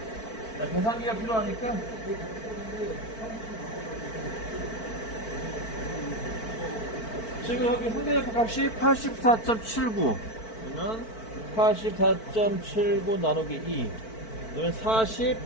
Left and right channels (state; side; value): late; right; 4.5 ms